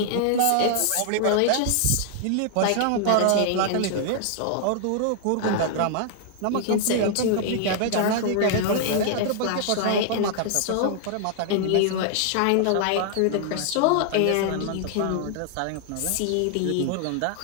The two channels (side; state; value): both; different; correlation -0.01